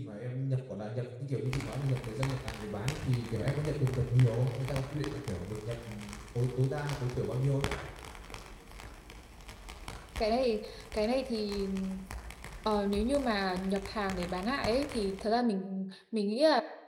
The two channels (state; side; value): identical; both; correlation 1.00